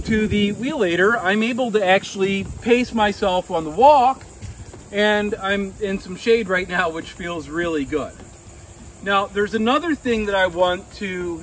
to the Wheellator, I'm able to actually pace myself on the walk, and I'm in some shade right now, which feels really good. Now, there's another thing that I want to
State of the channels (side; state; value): both; identical; correlation 1.00